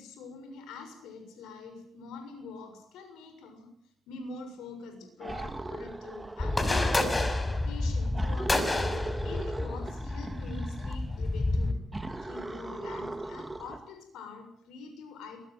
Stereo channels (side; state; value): both; normal; correlation 0.93